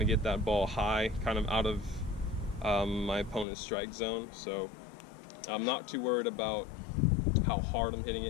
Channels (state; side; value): drops out; right; at 3.5 s